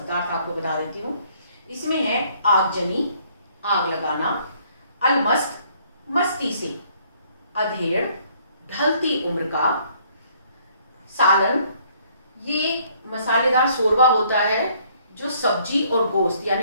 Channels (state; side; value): inverted; both; correlation -0.63